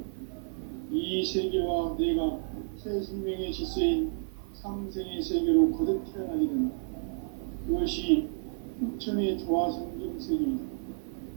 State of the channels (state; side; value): silent; left; 57 dB below the other